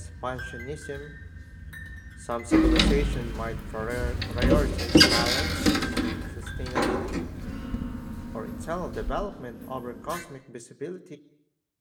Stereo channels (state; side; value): identical; both; correlation 1.00